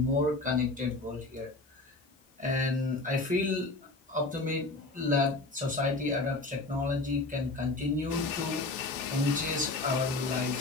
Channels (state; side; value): quieter; right; 3.1 dB